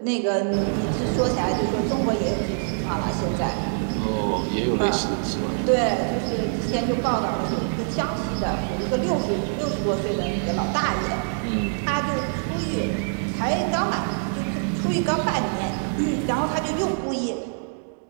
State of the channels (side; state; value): left; silent; digital silence